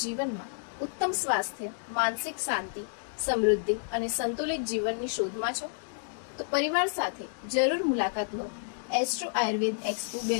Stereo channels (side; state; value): right; silent; digital silence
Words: જીવનમાં ઉત્તમ સ્વાસ્થ્ય, માનસિક શાંતિ, સમૃદ્ધિ અને સંતુલિત જીવનની શોધમાં છો? તો પરિવાર સાથે જરૂર મુલાકાત લો એસ્ટ્રો આયુર્વેદ એક્સપો